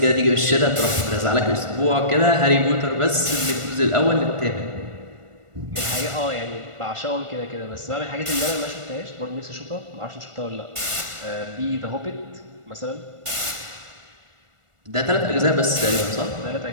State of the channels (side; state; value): left; late; 1.4 ms